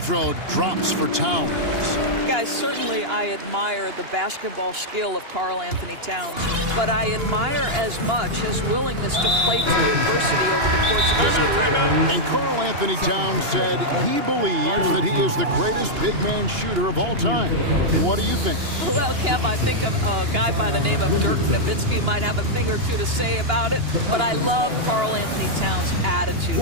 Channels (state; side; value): late; left; 2.9 ms